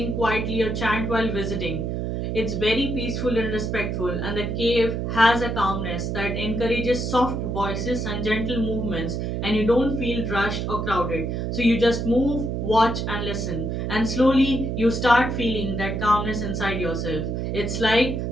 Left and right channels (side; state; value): right; noise; hum, 2 dB below the sound